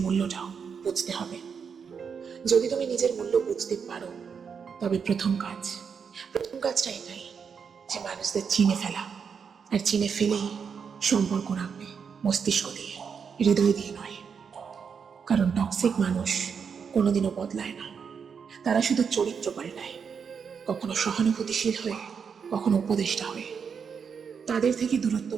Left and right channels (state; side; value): quieter; left; 6.5 dB